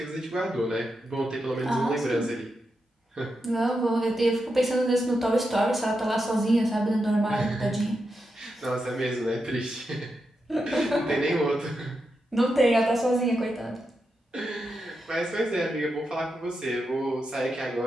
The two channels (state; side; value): normal; both; correlation 0.87